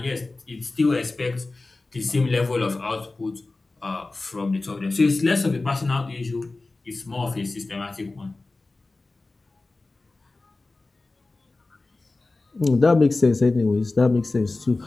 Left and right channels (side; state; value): right; quieter; 3.3 dB